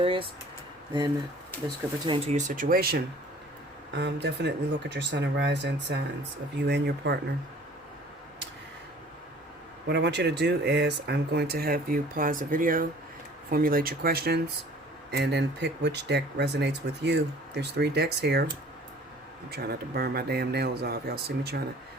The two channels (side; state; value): both; normal; correlation 0.51